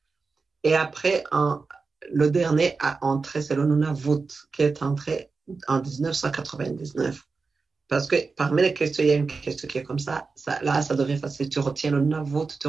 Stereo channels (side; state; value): left; quieter; 4.4 dB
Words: et après, le dernier a entré, c'est le Nunavut, qui est entré en 1999. Parce que parmi les questions, il y a une question qui est comme ça. Là, ça devient facile. Tu retiens le Nunavut, tu